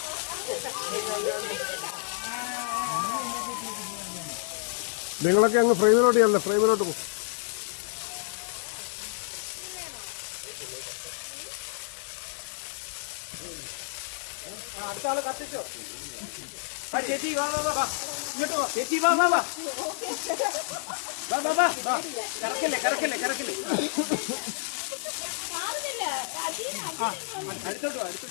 നിങ്ങളൊക്കെ അങ്ങ് ഫ്രെയിമിലോട്ട് ചെല്ലേ, ഫ്രെയിമിലോട്ട് പോകും. അടുത്ത ആള് കത്തിച്ചോ. ചേച്ചി വാ വാ വാ, ഇങ്ങോട്ട് വാ ചേച്ചി, വാ വാ വാ വാ വാ വാ വാ. കറക്കല്ലേ കറക്കല്ലേ കറക്കല്ലേ. അടുത്തോട്ട് വാ,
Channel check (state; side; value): silent; right; digital silence